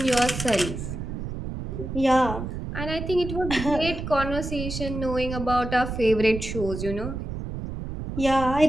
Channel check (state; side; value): noise; right; rumble, 6 dB below the sound